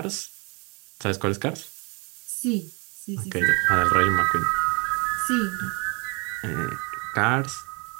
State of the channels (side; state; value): left; quieter; 30.9 dB